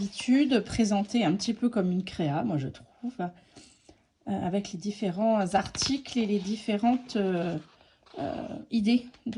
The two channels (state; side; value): identical; both; correlation 1.00